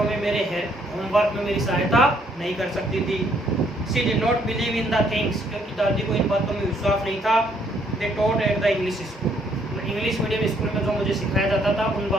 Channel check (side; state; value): both; normal; correlation 0.68